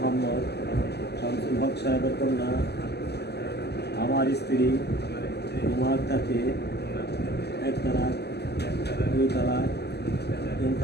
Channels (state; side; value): late; right; 0.48 ms